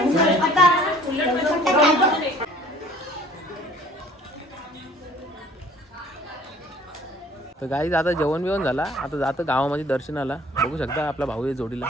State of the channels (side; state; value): both; normal; correlation 0.53